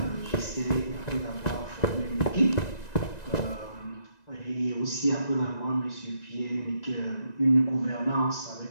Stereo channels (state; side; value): late; right; 1.9 ms